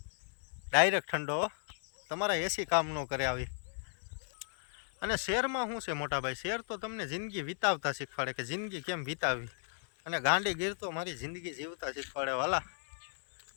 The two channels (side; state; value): right; silent; 54 dB below the other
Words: ડાયરેક્ટ ઠંડો, તમારા એસી કામ ન કરે આવી. અને શહેરમાં શું છે મોટા ભાઈ, શહેર તો તમને જિંદગી વિતાવતા શીખવાડે કે જિંદગી કેમ વિતાવી. અને ગાંડીગીર તો મારી જિંદગી જીવતા શીખવાડે વાલા.